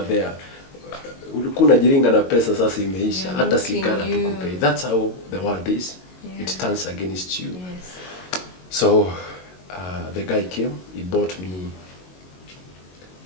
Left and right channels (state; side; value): late; right; 22 ms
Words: there. Ulikuwa unajiringa na pesa sasa imeisha. Hata sigara tukupe. That's how the world is. Yeah. It turns against you. Yes. So the guy came. He bought me